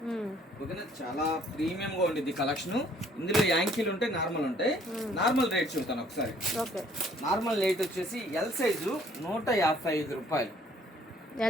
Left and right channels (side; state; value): both; normal; correlation 0.60